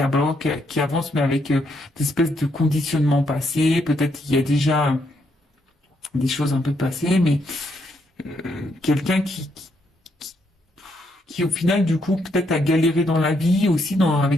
avance, mais avec des espèces de conditionnements passés. Peut-être il y a déjà des choses un peu passées, mais quelqu'un qui au final, du coup, peut-être a galéré dans la vie aussi,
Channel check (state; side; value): normal; both; correlation 0.75